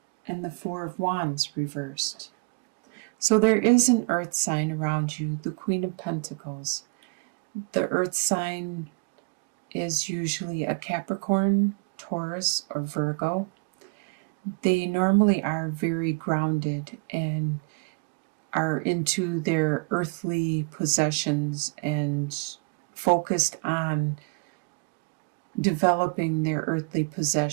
and the Four of Wands reversed. So there is an earth sign around you, the Queen of Pentacles. The earth sign is usually a Capricorn, Taurus, or Virgo. They normally are very grounded and are into their earthly possessions and focused on developing their earthly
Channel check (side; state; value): left; quieter; 34.1 dB